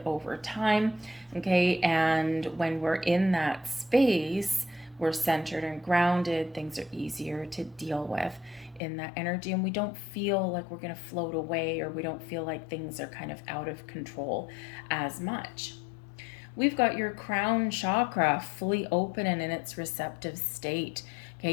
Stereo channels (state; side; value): drops out; right; at 8.8 s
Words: over time. Okay, and when we're in that space, we're centered and grounded, things are easier to deal with in that energy, and we don't feel like we're going to float away, or we don't feel like things are kind of out of control as much. We've got your crown chakra fully open and in its receptive state. Okay,